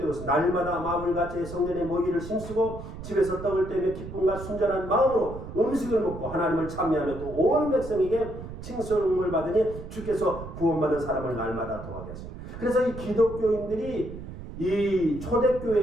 있습니다. 날마다 마음을 같이 성전에 모이기를 힘쓰고 집에서 떡을 떼며 기쁨과 순전한 마음으로 음식을 먹고 하나님을 찬미하며 또 온 백성에게 칭송을 받으니 주께서 구원받은 사람을 날마다 더하게 하십니다. 그래서 이 기독교인들이 이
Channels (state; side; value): noise; right; rumble, 11 dB below the sound